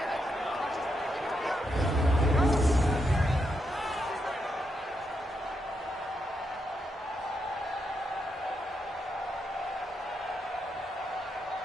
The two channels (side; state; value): both; normal; correlation 0.82